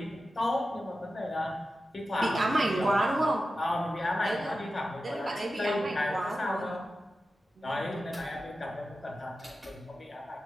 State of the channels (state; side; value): normal; both; correlation 0.92